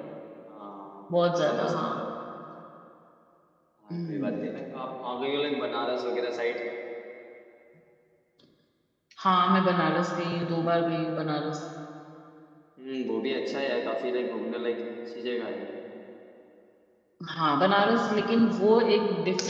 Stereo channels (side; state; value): both; identical; correlation 1.00